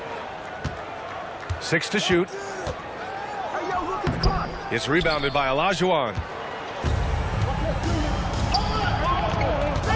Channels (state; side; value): identical; both; correlation 1.00